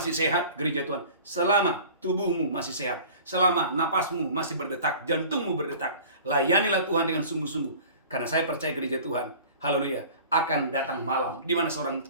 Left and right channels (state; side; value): inverted; both; correlation -0.43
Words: sehat, gereja Tuhan. Selama tubuhmu masih sehat, selama napasmu masih berdetak, jantungmu berdetak, layanilah Tuhan dengan sungguh-sungguh. Karena saya percaya gereja Tuhan, haleluya, akan datang malam di mana seorang